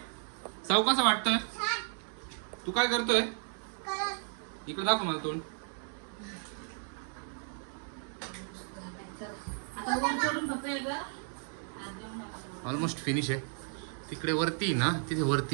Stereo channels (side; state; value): left; silent; 55 dB below the other